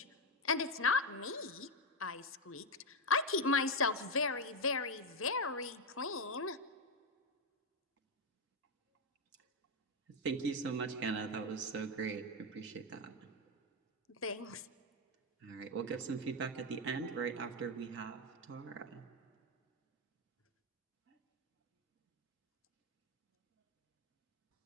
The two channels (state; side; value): normal; both; correlation 0.06